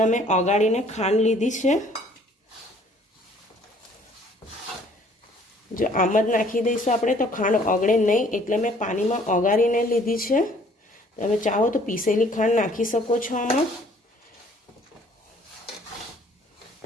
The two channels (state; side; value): normal; both; correlation 0.58